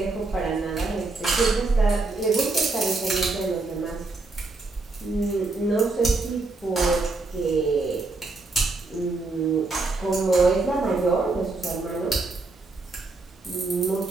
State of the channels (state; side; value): quieter; left; 3.5 dB